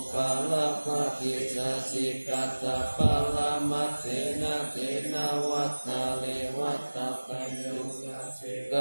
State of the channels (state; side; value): inverted; both; correlation -1.00